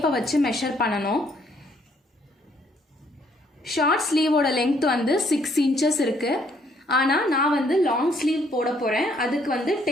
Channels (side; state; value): both; normal; correlation 0.67